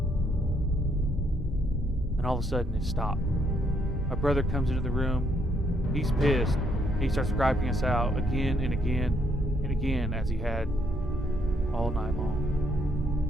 And all of a sudden it stopped. My brother comes into the room. He's pissed. He starts griping us out again and again and again, as he had all night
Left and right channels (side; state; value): both; normal; correlation 0.72